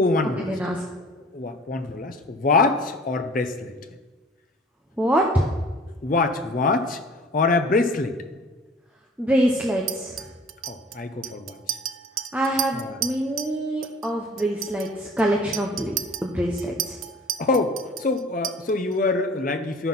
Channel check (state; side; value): normal; both; correlation 0.47